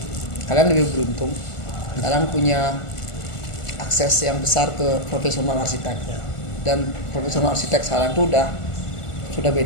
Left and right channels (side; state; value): right; late; 1.5 ms